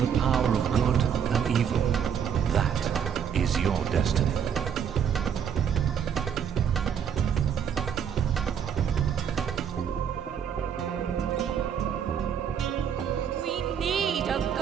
power of good and evil. That is your destiny.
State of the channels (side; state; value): left; quieter; 8.1 dB